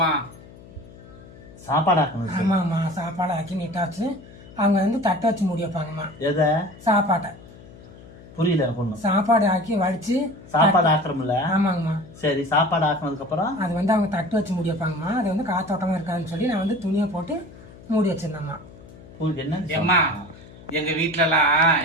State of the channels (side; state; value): left; noise; hum, 20 dB below the sound